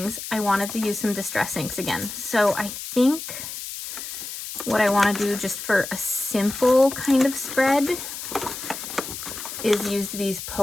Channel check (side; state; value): left; noise; hiss, 8 dB below the sound